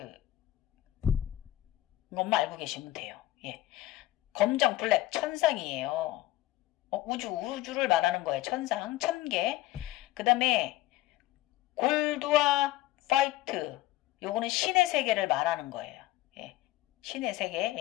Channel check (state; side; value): quieter; right; 15.9 dB